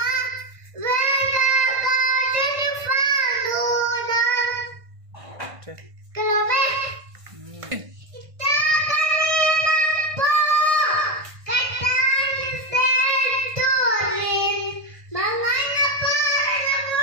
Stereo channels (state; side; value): late; left; 1.6 ms